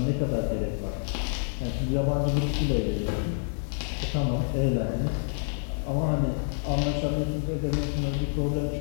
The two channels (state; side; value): silent; right; digital silence